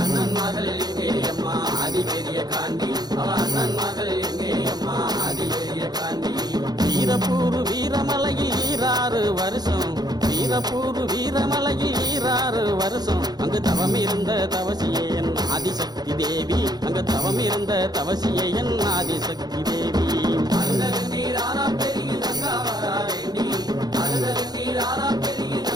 மகள் எங்கே அம்மா ஆதி பெரிய காண்டி அவ அண்ணன் மகள் எங்கே அம்மா ஆதி பெரிய காண்டி வீரப்பூர் வீரமலையில் 6 வருஷம் வீரப்பூர் வீரமலையில் 6 வருஷம் அங்கு தவம் இருந்த தவசியே என் ஆதிசக்தி தேவி அங்கு தவம் இருந்த தவசியே என் ஆதிசக்தி தேவி அழுத நீராரா பெருகி தங்கா வரா வேண்டி அழுத நீராரா பெருகி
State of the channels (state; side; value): late; left; 0.19 ms